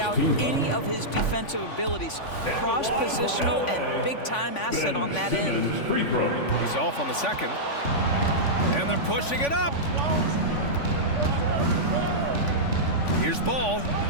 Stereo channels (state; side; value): late; right; 3.5 ms